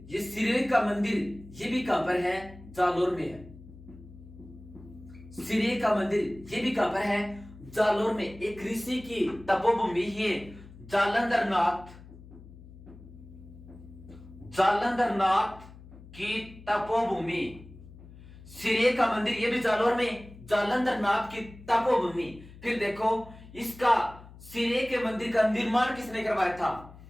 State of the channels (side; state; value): left; noise; hum, 19 dB below the sound